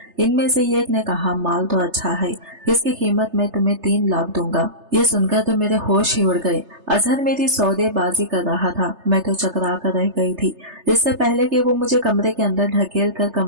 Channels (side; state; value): left; late; 3.3 ms